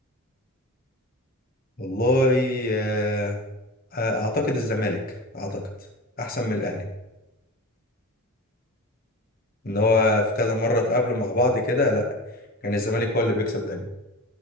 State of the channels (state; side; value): normal; both; correlation 0.31